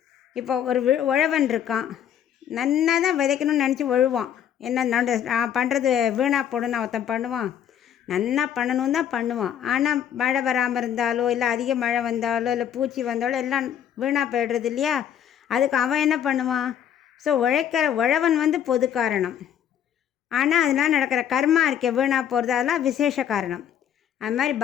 இப்போ ஒரு உழவன் இருக்கான், நன்னா தான் விதைக்கணும்னு நினச்சி உழுவான். என்ன நான் பண்ணுறது வீணாக போடணும்னு ஒருத்தன் பண்ணுவான். நன்னா பண்ணணும் தான் பண்ணுவான். ஆனால் மழை வராமல் இருந்தாலோ, இல்லை அதிக மழை வந்தாலோ, இல்லை பூச்சி வந்தாலோ எல்லாம் வீணாக போய்டுறது இல்லையா. அதுக்கு அவன் என்ன பண்ணுவான்? ஸோ உழவன் பொது காரணம். ஆனால் அதனால் நடக்கிற கர்மா இருக்க வீணாக போகிறது அதெல்லாம் விசேஷ காரணம். அது மாதிரி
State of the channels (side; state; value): right; quieter; 9.5 dB